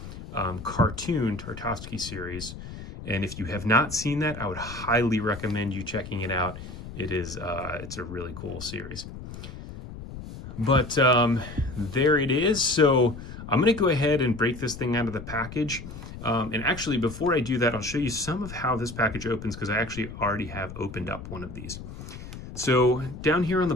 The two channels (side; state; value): left; noise; rumble, 12 dB below the sound